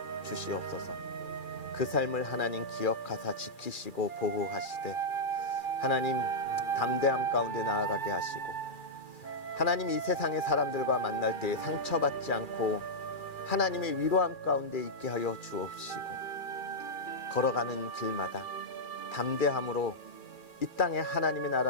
주시옵소서. 그 삶을 하나님 기억하사 지키시고 보호하시되 하나님 담대함 가운데 나아가게 하시고 하나님 이 세상의 사람들과 만날 때에 상처받지 않고 하나님의 위로함 가운데 있게 하여 주옵시고 걸어가는 길마다 담대함으로 이 땅에 하나님의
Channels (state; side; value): late; right; 2.4 ms